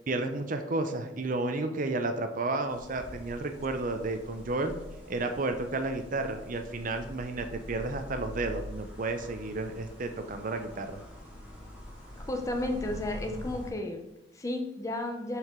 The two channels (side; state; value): both; normal; correlation 0.33